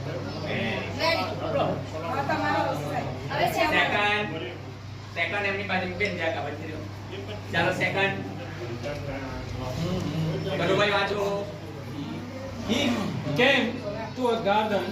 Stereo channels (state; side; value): identical; both; correlation 1.00